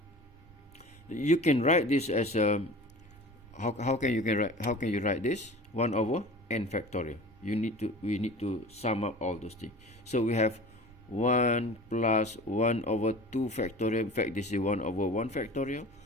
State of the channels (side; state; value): right; noise; rumble, 25 dB below the sound